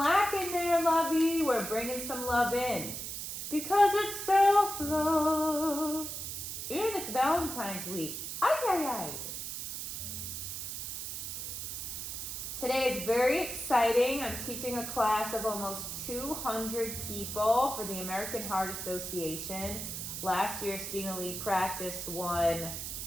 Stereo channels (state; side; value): noise; right; hiss, 6 dB below the sound